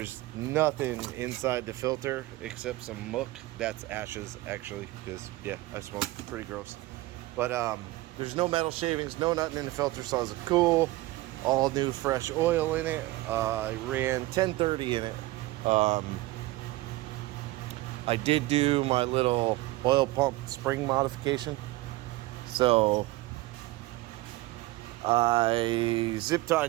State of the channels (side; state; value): left; quieter; 19.0 dB